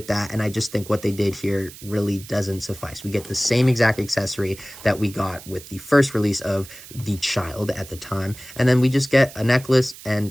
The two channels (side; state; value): right; noise; hiss, 17 dB below the sound